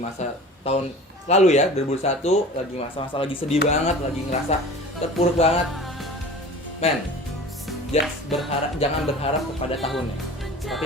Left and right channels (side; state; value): both; normal; correlation 0.40